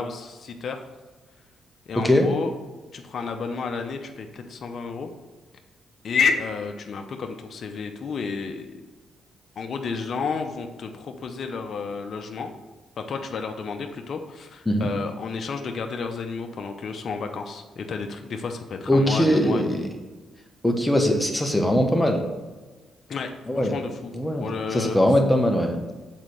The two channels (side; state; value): both; normal; correlation 0.84